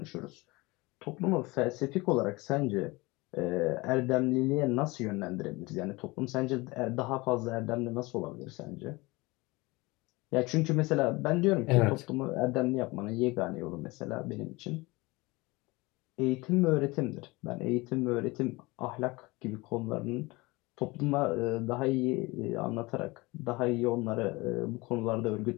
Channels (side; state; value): right; quieter; 23.2 dB